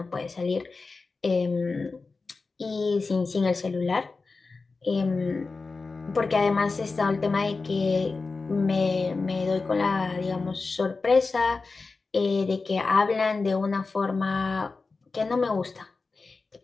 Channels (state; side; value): quieter; right; 4.0 dB